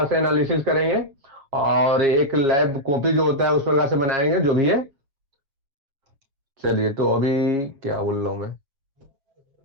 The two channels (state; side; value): late; left; 7.3 ms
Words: से एनालिसिस करेंगे। और एक लैब कॉपी जो होता है उस प्रकार से बनाएंगे, जो भी है। चलिए, तो अभी क्या बोल रहा हूँ मैं,